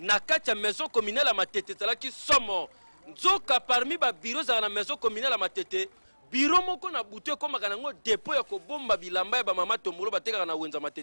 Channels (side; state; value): both; inverted; correlation -1.00